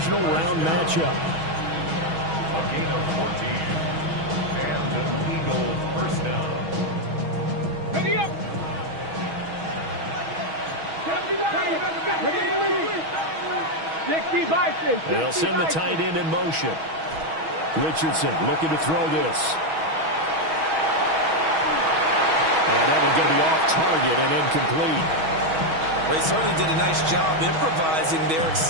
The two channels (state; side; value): late; left; 6.2 ms